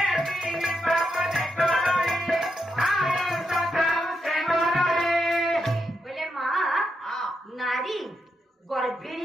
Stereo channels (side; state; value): both; normal; correlation 0.83